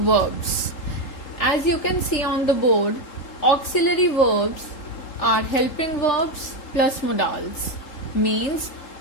As you can see on the board, auxiliary verbs are helping verbs plus modals. Means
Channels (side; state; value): right; late; 3.8 ms